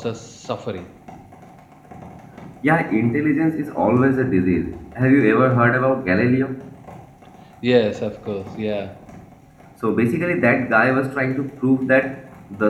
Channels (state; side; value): identical; both; correlation 1.00